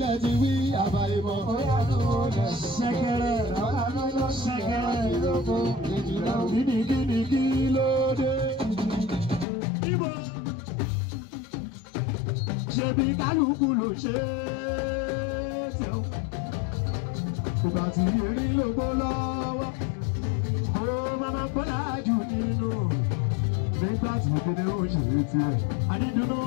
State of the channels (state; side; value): drops out; right; at 9.5 s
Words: ti wí àbáyébọ̀ ṣẹ̀kẹ̀rẹ̀ ṣẹ̀kẹ̀rẹ̀ gidigidi kí ló dé ibo ṣebí kálukú ló ṣe é tẹ̀ ìgbà tí erí ló gbó lọ́wọ́ kó máma bọ́lá jù nínú nígbà tí ìdílé ó ṣe é tirẹ̀ àdídúró